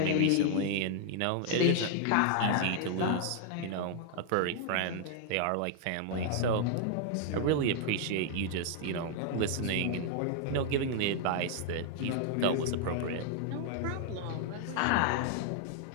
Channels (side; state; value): both; different; correlation 0.00